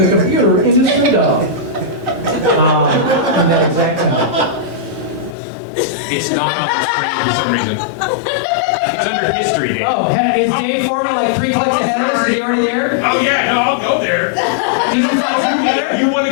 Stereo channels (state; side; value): drops out; right; at 5.4 s